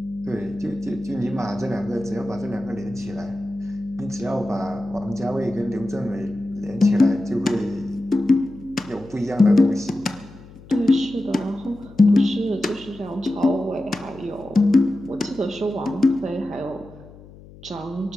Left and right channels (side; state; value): left; noise; hum, 20 dB below the sound